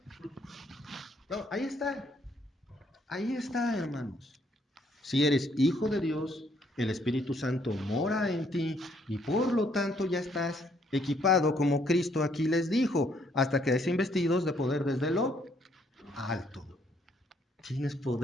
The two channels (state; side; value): normal; both; correlation 0.68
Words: No, ahí está. Ahí está, hermanos. Si eres hijo de Dios, el Espíritu Santo mora en ti y por lo tanto ya estás equipado como Cristo aquí les dijo, hasta que sean investidos de poder desde lo alto. Tienes